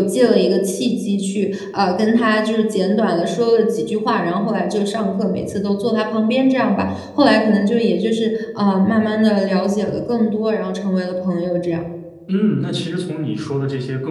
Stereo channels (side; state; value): both; identical; correlation 1.00